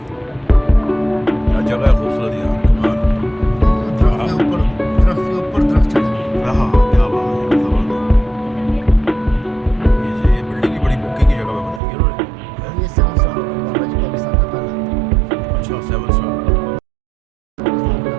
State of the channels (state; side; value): drops out; left; at 11.8 s